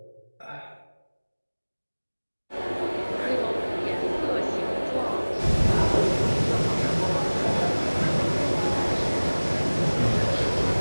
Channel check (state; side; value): inverted; both; correlation -1.00